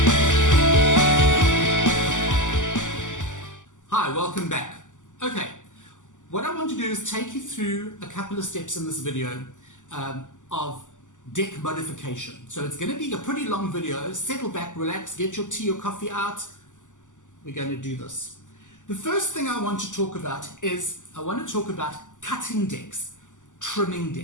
Hi, welcome back. Okay, what I want to do is take you through a couple of steps in this video of deck modification. So it's going to be a pretty long video. Settle back, relax, get your tea or coffee out. We're going to do this. The first thing I want to talk about is I want to talk about cutting decks, trimming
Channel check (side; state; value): right; late; 0.87 ms